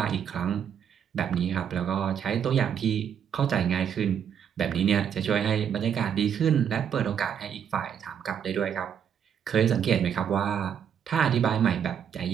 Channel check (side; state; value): left; quieter; 8.3 dB